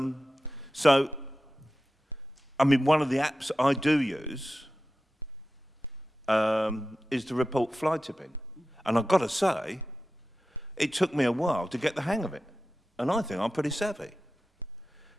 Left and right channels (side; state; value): both; normal; correlation 0.94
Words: I mean, one of the apps I do use is to report fly tipping. And I've got to say, it took me a while to get the hang of it. And I think I'm pretty savvy.